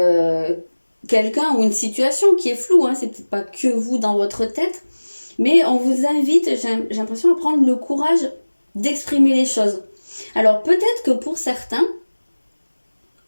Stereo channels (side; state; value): both; inverted; correlation -1.00